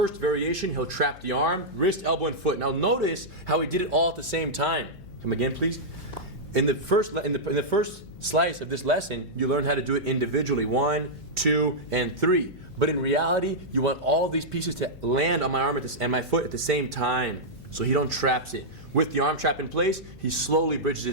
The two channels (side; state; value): left; noise; hum, 20 dB below the sound